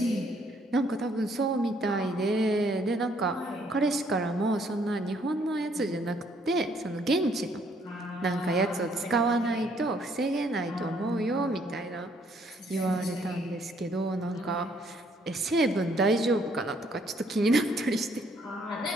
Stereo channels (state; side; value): normal; both; correlation 0.66